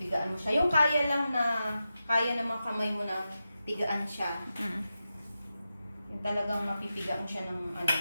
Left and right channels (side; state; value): both; inverted; correlation -0.90